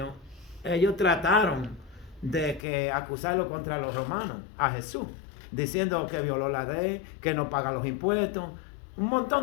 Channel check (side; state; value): right; drops out; at 2.7 s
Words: ellos trataron de acusarlo contra los romanos, a Jesús, diciendo que violó la ley, que no paga los impuestos, un